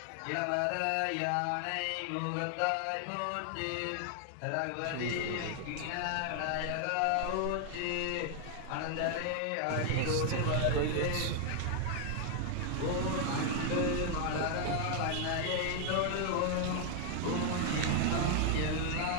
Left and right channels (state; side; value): different; both; correlation 0.00